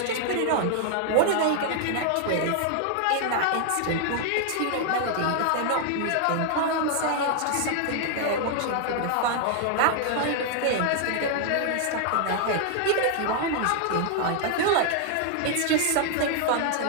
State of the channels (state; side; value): different; both; correlation 0.00